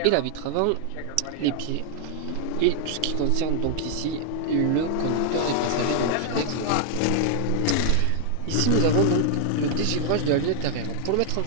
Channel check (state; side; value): different; both; correlation -0.01